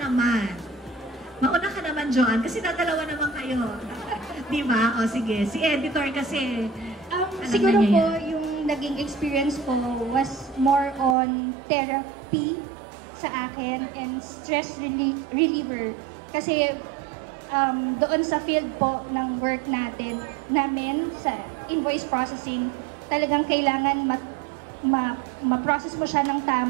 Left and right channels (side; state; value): left; drops out; at 11.2 s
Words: naman. Mauna ka naman, Joanne, kasi dadalawa naman kayo. Diba? O, sige. Si editor kasi, siguro po, yung naging experience ko was more on therapy sa akin and stress reliever. Kasi doon sa field po ng work namin sa invoice processing, talagang kailangan ma-process mo siya ng